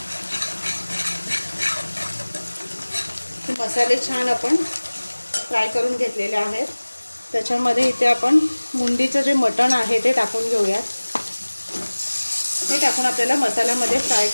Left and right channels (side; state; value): both; inverted; correlation -1.00